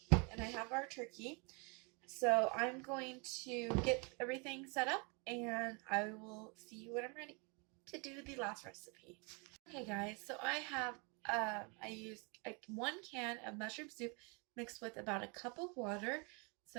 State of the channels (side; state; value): left; quieter; 32.4 dB